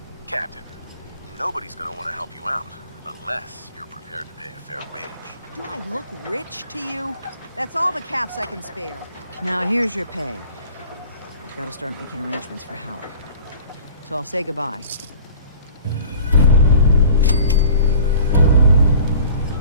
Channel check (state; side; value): inverted; both; correlation -0.46